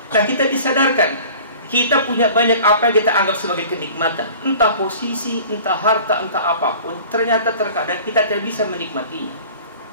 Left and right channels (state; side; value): inverted; both; correlation -0.44